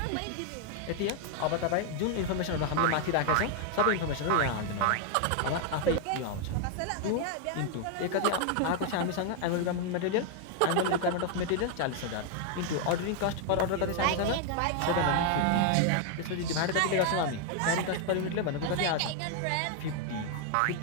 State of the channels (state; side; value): different; both; correlation 0.01